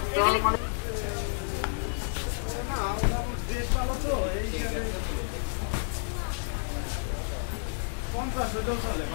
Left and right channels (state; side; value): silent; right; 58 dB below the other